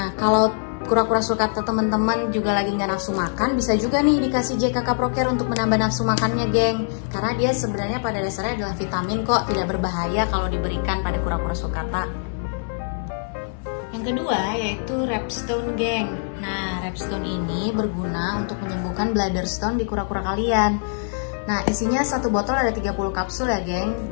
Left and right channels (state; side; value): silent; right; 63 dB below the other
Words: kalau kura-kura sulcata teman-teman juga lagi nggak nafsu makan, bisa juga nih dikasih JKK Procare untuk menambah nafsu makannya, geng. Karena dia sebenarnya pada dasarnya adalah vitamin kok, tidak berbahaya kalau diberikan pada kura-kura sulcata. Yang kedua yaitu Repstone, geng. Nah, Repstone ini berguna untuk menyembuhkan bladder stone di kura-kura kalian. Nah, isinya satu botol ada 30 kapsul ya, geng.